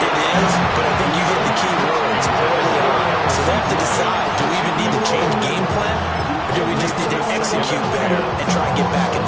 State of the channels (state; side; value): identical; both; correlation 1.00